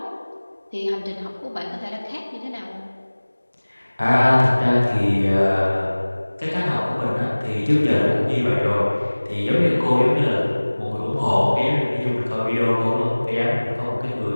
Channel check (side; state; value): both; inverted; correlation -1.00